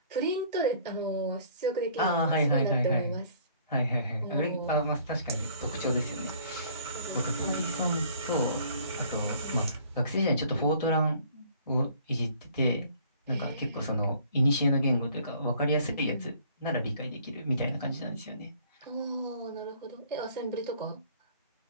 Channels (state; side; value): inverted; both; correlation -0.56